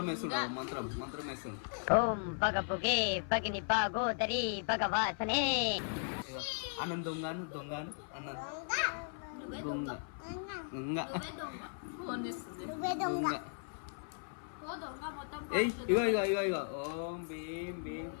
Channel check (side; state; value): right; silent; 53 dB below the other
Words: వేస్తున్నాడు మంత్రం వేస్తున్నాడు ఓం పగ పొగే పగిని పాగోదరి భగవాసనే అన్నం దొంగను దొంగను అన్నం దొంగ దొంగ ఫోన్ చేస్తుంది దొంగ ఏయ్ ఇగో ఇగో ఇగో ఇగో ఓం భీం భీం